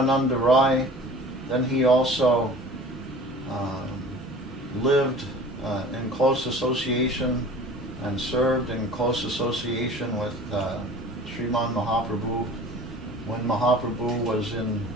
Rai, then he also lived in close association and served in close association with Sriman Mahaprabhu when Mahaprabhu was in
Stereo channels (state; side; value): normal; both; correlation 0.43